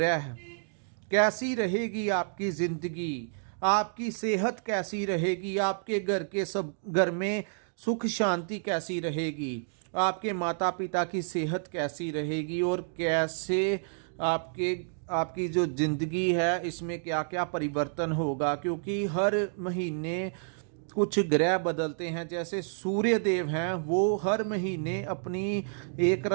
कैसी रहेगी आपकी जिंदगी, आपकी सेहत कैसी रहेगी, आपके घर में सुख शांति कैसी रहेगी, आपके माता पिता की सेहत कैसी रहेगी और कैसे आपकी जो जिंदगी है इसमें क्या क्या परिवर्तन होगा। क्योंकि हर महीने कुछ ग्रह बदलते हैं। जैसे सूर्य देव हैं, वो हर महीने अपनी एक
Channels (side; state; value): left; silent; digital silence